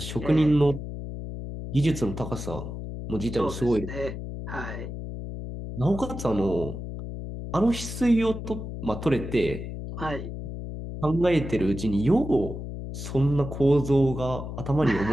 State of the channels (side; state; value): left; noise; hum, 8 dB below the sound